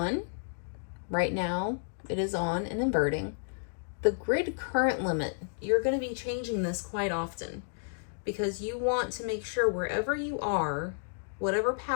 Right now it is on and inverting. The grid current limit, you're going to be changing this quite often because you want to make sure wherever you are, whatever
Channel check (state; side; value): silent; right; digital silence